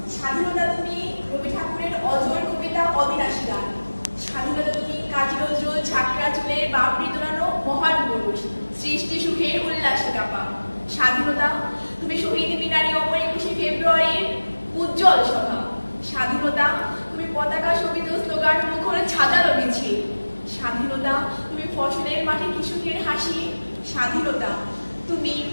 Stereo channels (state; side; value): inverted; both; correlation -1.00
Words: স্বাধীনতা তুমি রবি ঠাকুরের অজর কবিতা অবিনাশী গান। স্বাধীনতা তুমি কাজী নজরুল ঝাঁকড়া চুলের বাবরি দোলানো মহান পুরুষ, সৃষ্টি সুখের উল্লাসে কাপা। স্বাধীনতা তুমি শহীদ মিনারে অপর 21শে ফেব্রুয়ারির উজ্জ্বল সভা। স্বাধীনতা তুমি পতাকা শোভিত স্লোগান মুখর ছাজালো মিছিল। স্বাধীনতা তুমি ফসলের মাঠে কৃষকের হাসি। স্বাধীনতা তুমি